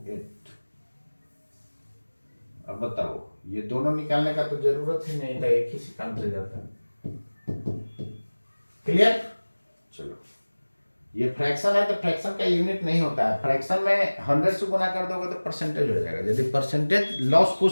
अब बताओ, ये दोनों निकालने का तो जरूरत ही नहीं था, एक ही से काम चल जाता है। क्लियर? चलो, ये फ्रैक्शन है तो फ्रैक्शन का यूनिट नहीं होता है। फ्रैक्शन में 100 से गुना कर दोगे तो परसेंटेज हो जाएगा। यदि परसेंटेज लॉस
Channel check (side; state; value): both; inverted; correlation -1.00